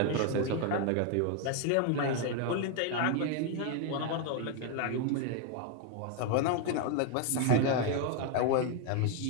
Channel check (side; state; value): both; different; correlation 0.01